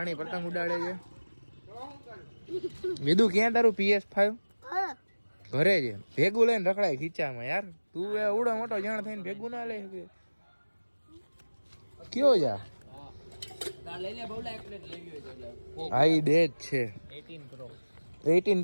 પતંગ ઉડાડે છે. વિદુ ક્યાં તારું PS5? ઘરે છે. ભેગું લઈને રખડાય ખીચામાં. યાર તું એ ઉડો મોટો જાણ થઈને ભેગું ના લે કે કયો જા? હા ઈ દે જ છે. 18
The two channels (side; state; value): both; inverted; correlation -1.00